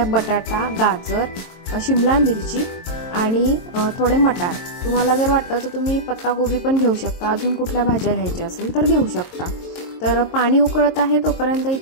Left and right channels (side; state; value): right; late; 23 ms